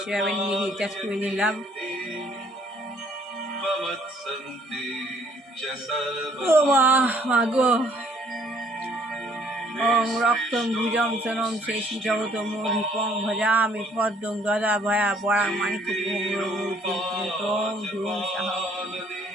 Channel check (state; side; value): normal; both; correlation 0.62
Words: সেভাবে নিয়ে রিচার্জ করে নিলাম। ও মা গো ওম রক্তম ভুজম সনম শেষী জগত মোহিপং ভজামি পদ্মং গদা ভয়া বরাং মানিকম ধুম সাহ